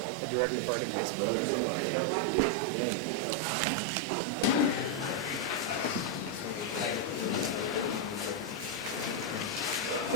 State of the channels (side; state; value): both; normal; correlation 0.00